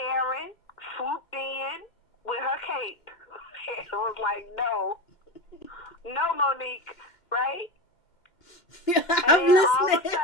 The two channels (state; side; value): late; right; 2.1 ms